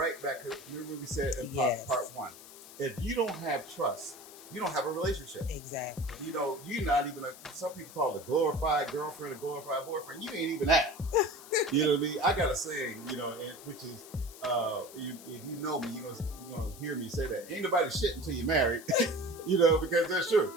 back to, remember we said in part one. If you don't have trust, you don't have a relationship. Exactly. You're not even some people call it a glorified girlfriend, a glorified boyfriend. You ain't even that. You know what I mean? I got a saying, which is, if you know me, you're gonna hear me say that. Ain't nobody shit until you're married. Because that's true.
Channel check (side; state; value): left; noise; hiss, 17 dB below the sound